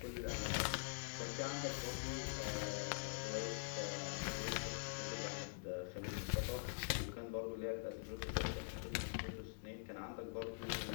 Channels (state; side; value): silent; right; digital silence